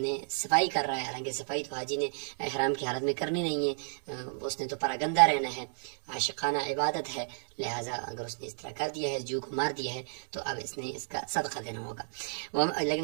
صفائی کر رہا ہے، حالانکہ صفائی تو حاجی نے احرام کی حالت میں کرنی نہیں ہے، اس نے تو پراگندہ رہنا ہے، عاشقانہ عبادت ہے، لہذا اگر اس نے اس طرح کر دیا ہے، جو کو مار دیا ہے، تو اب اس نے اس کا صدقہ دینا ہوگا۔ لیکن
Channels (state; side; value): silent; left; 56 dB below the other